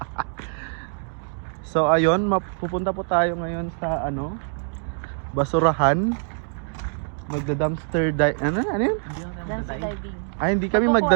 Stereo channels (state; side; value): silent; left; 59 dB below the other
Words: So ayun, pupunta po tayo ngayon sa basurahan. Magda-dumpster dive. Ano yun? Dumpster diving. Ay, hindi kami